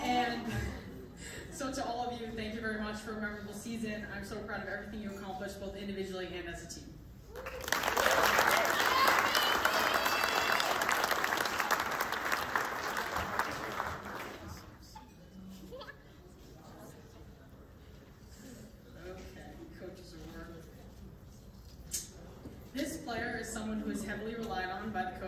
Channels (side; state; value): both; identical; correlation 1.00